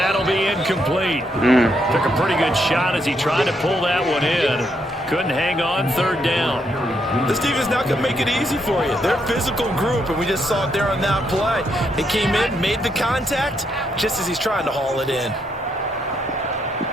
be incomplete. Took a pretty good shot as he tried to pull that one in. Couldn't hang on 3rd down. This team is not going to make it easy for you. They're a physical group, and we just saw it there on that play. He came in, made the contact, just as he's trying to haul it in.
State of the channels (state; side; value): normal; both; correlation 0.77